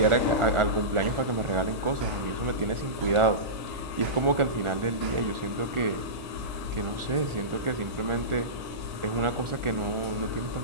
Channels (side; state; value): left; late; 1.4 ms